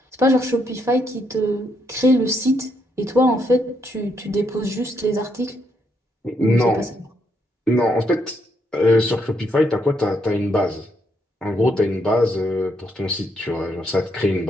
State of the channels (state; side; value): normal; both; correlation 0.76